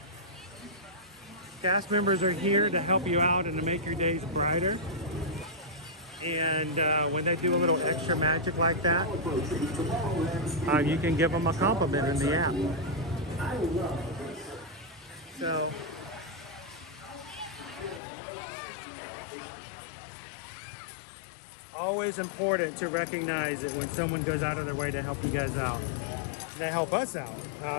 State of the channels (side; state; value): right; drops out; at 18.0 s